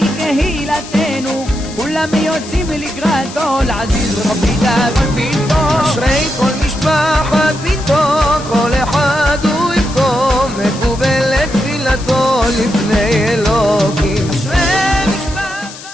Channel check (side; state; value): left; noise; hiss, 15 dB below the sound